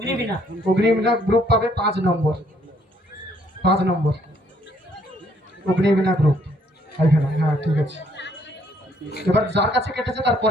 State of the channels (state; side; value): normal; both; correlation 0.67